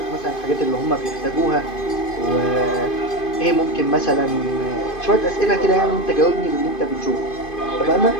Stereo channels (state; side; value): late; right; 2.5 ms